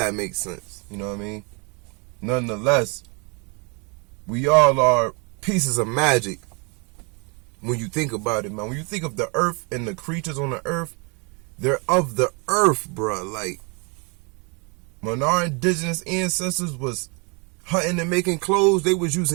makes sense. You know what I mean? Nonetheless, we all are pieces of magic. When you think about it, man. When you think of the earth and the creatures on the earth, they're of the earth, bruh. Like, when our indigenous ancestors was hunting and making clothes, they was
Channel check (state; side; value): quieter; left; 32.6 dB